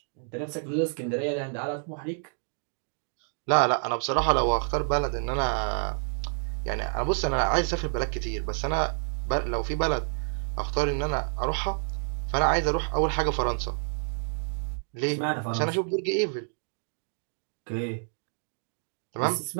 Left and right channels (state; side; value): silent; left; digital silence